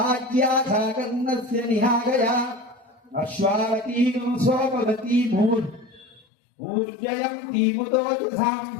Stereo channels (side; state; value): right; drops out; at 6.2 s